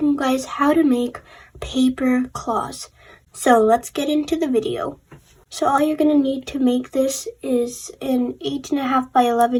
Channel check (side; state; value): both; identical; correlation 1.00